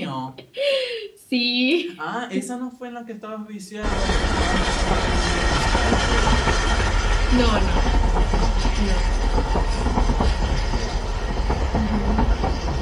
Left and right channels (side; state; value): both; identical; correlation 1.00